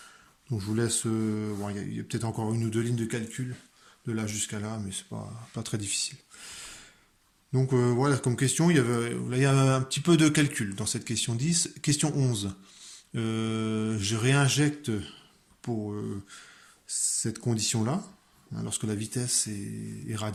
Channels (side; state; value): both; identical; correlation 1.00